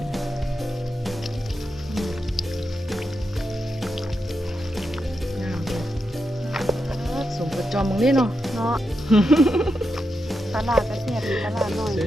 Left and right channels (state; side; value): normal; both; correlation 0.86